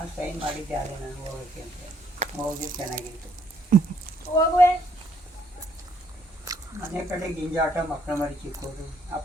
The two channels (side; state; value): both; normal; correlation 0.68